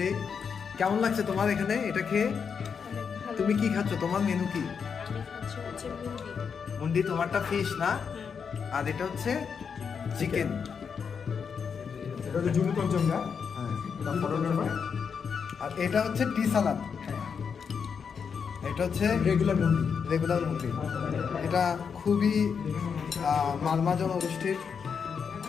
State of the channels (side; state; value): right; quieter; 6.4 dB